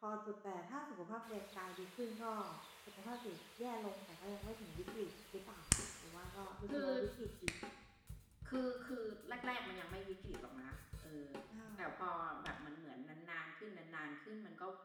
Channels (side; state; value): both; identical; correlation 1.00